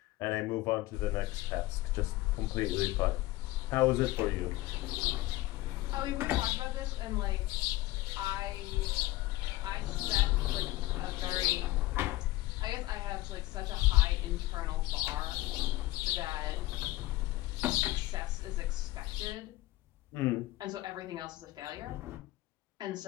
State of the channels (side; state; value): right; quieter; 18.1 dB